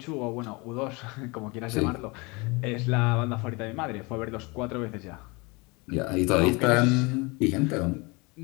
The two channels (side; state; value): right; quieter; 27.0 dB